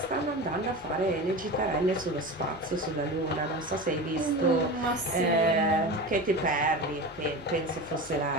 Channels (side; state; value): both; normal; correlation 0.28